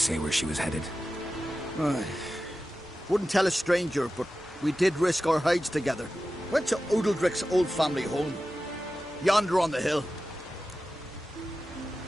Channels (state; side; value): normal; both; correlation 0.93